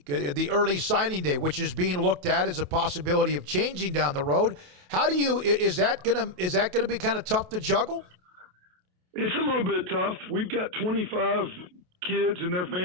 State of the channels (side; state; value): left; late; 28 ms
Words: the early signing day, which is being looked at as a possibility of changing down the road. Is that gonna be kind of tough to juggle? It's a little bit tough. We've got 25 kids and their